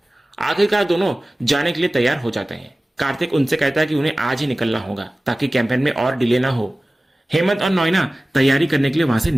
आखिरकार दोनों जाने के लिए तैयार हो जाते हैं। कार्तिक उनसे कहता है कि उन्हें आज ही निकलना होगा ताकि कैंपेन में और डिले ना हो। हेमंत और नॉइना तैयारी करने के लिए वहां से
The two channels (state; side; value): normal; both; correlation 0.97